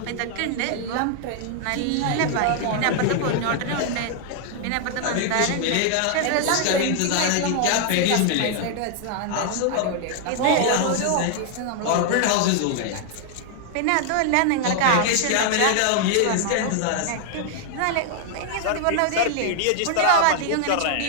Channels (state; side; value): different; both; correlation 0.00